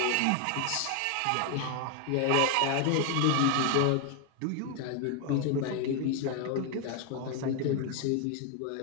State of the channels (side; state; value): both; different; correlation 0.01